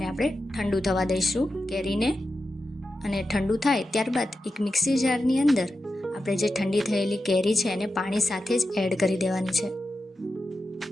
આપણે ઠંડુ થવા દઈશું કેરીને. અને ઠંડુ થાય ત્યારબાદ એક મિક્સી જારની અંદર આપણે જે ઠંડી થયેલી કેરી છે એને પાણી સાથે જ એડ કરી દેવાની છે.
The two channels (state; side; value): normal; both; correlation 0.90